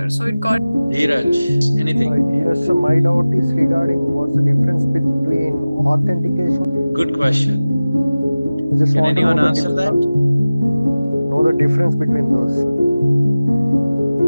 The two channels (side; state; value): both; inverted; correlation -0.97